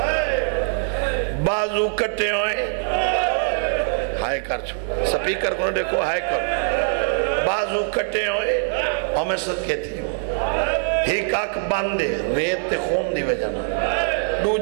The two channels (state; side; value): silent; left; 60 dB below the other